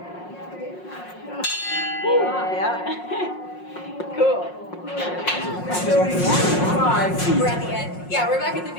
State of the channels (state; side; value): late; right; 5.5 ms